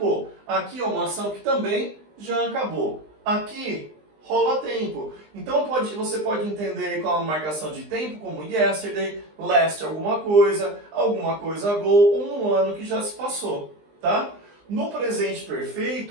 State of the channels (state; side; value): late; left; 20 ms